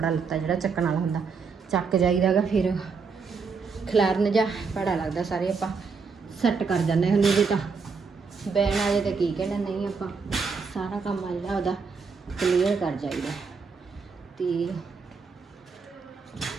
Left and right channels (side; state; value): left; quieter; 5.1 dB